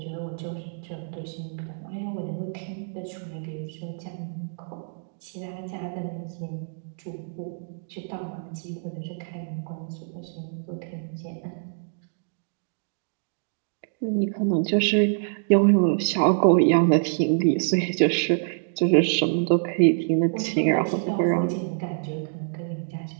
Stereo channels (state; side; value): silent; left; digital silence